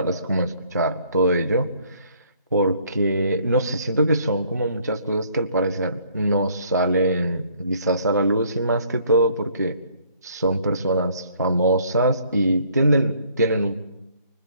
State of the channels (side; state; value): both; inverted; correlation -0.62